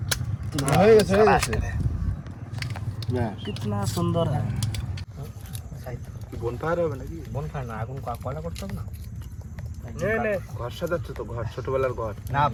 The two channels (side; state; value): both; identical; correlation 1.00